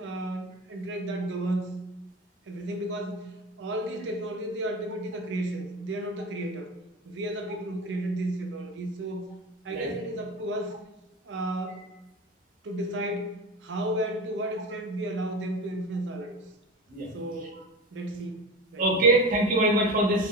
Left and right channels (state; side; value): normal; both; correlation 0.29